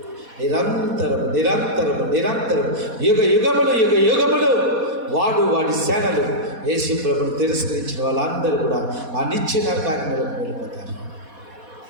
నిరంతరము నిరంతరము నిరంతరము యుగములు వాడి సేనలు యేసు ప్రభువును తిరస్కరించిన వాళ్ళందరూ కూడా ఆ నిత్య నరకాగ్నిలోకి వెళ్ళిపోతారు.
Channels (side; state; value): left; late; 4.1 ms